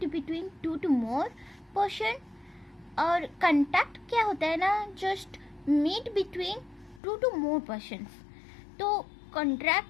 between two to more person. और कॉन्ट्रैक्ट क्या होता है ना, just meet between two to more persons. तो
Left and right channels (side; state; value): right; drops out; at 7.0 s